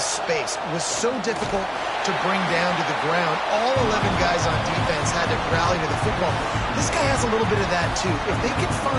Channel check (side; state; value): both; identical; correlation 1.00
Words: was so difficult to bring down to the ground. All 11 guys on defense had to rally to the football. This guy has a little bit of that too. If they can